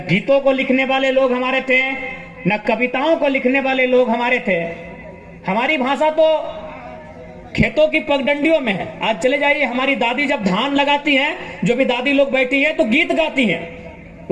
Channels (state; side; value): identical; both; correlation 1.00